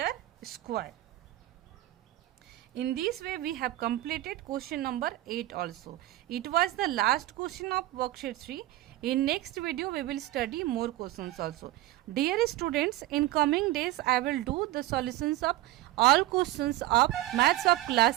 square. In this way we have completed question number 8 also. It was the last question of worksheet 3. In next video we will study more questions also. Dear students, in coming days I will do the solutions of all questions of maths of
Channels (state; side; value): quieter; left; 15.9 dB